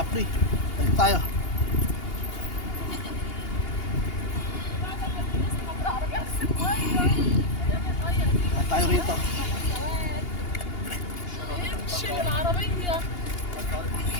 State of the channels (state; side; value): late; right; 2.8 ms